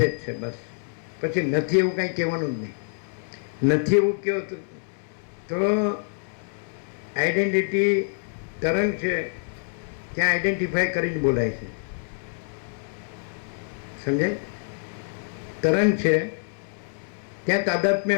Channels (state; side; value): silent; right; digital silence